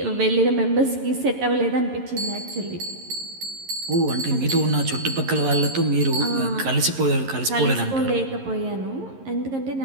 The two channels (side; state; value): left; late; 11 ms